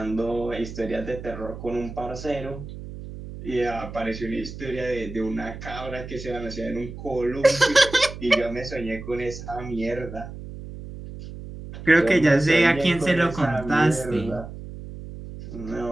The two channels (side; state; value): right; noise; hum, 11 dB below the sound